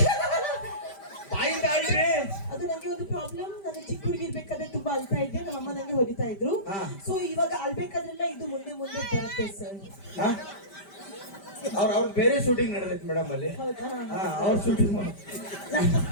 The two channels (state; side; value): late; right; 5.1 ms